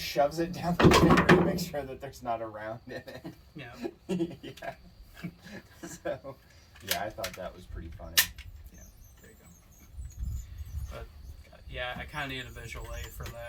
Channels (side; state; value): both; identical; correlation 1.00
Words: it down the finger to make sure that there's not a round in it. Yeah. Yeah. So, yeah, I thought that was pretty funny. Yeah, there you go. But, yeah, I kind of need a visual aid for